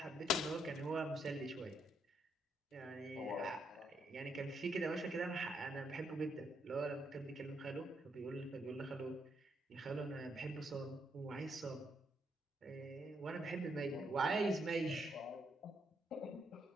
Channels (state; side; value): normal; both; correlation 0.76